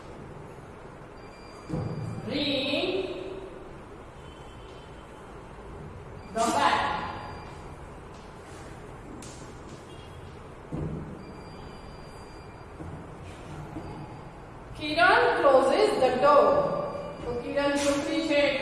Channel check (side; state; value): both; identical; correlation 1.00